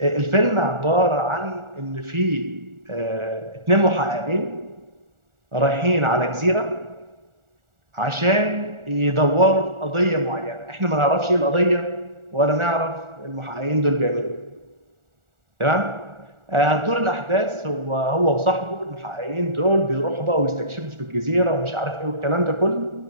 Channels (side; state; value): left; late; 1.4 ms